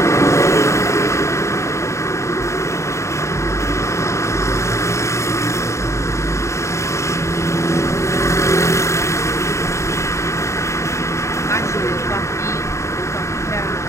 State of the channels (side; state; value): right; late; 0.14 ms